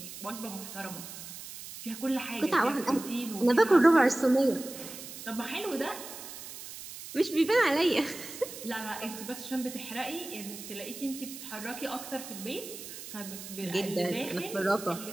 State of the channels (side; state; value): right; noise; hiss, 12 dB below the sound